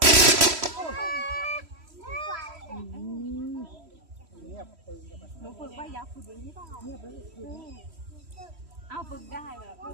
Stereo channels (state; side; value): late; left; 3.1 ms